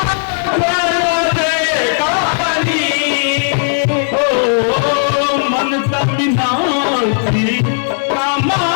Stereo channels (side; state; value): right; silent; digital silence